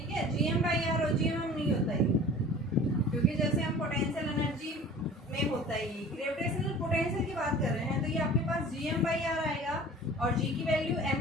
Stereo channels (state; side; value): normal; both; correlation 0.44